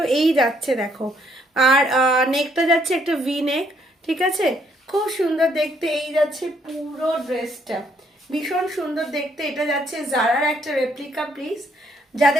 এই যাচ্ছে দেখো। আর নেকটা যাচ্ছে একটা ভি নেক। ঠিক আছে, খুব সুন্দর দেখতে। এই যাচ্ছে পুরো ড্রেসটা, ভীষণ সুন্দর দেখতে। এটা যাচ্ছে জারার একটা রেপ্লিকা পিস।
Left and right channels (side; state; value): both; normal; correlation 0.69